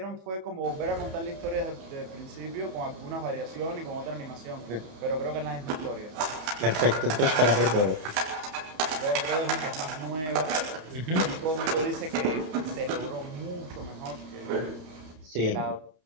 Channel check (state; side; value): late; left; 31 ms